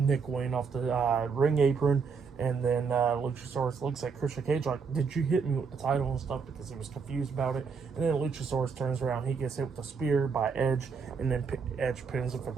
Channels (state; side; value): quieter; left; 5.5 dB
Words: Wayne off the ring apron, and then Luchasaurus looks at Christian Cage like, did you hit me with the title and stuff, because he was confused about it. And then Luchasaurus turns around, he gets hit with a spear by Edge, and then Edge pins him for